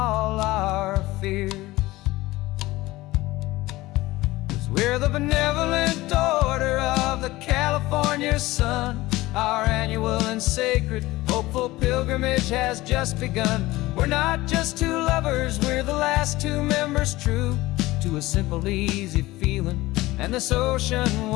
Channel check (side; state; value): right; quieter; 18.8 dB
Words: our fears. 'Cause we're the benevolent order of the California sun. Our annual and sacred hopeful pilgrimage has just begun. We're not just two lovers, we're the last two members true to a simple, easy feeling and this ocean